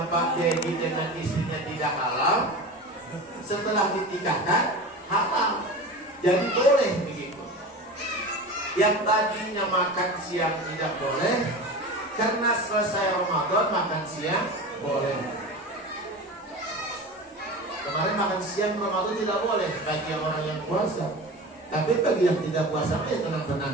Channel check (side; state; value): both; normal; correlation 0.31